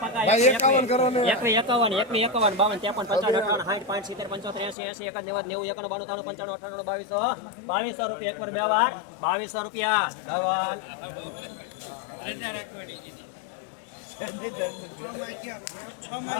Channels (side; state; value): right; drops out; at 4.8 s